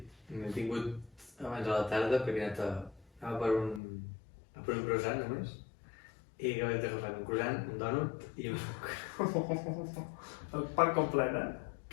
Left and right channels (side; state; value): right; drops out; at 3.8 s